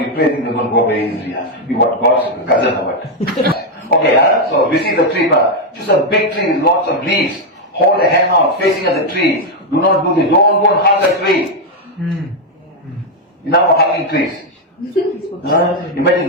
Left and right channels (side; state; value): both; normal; correlation 0.01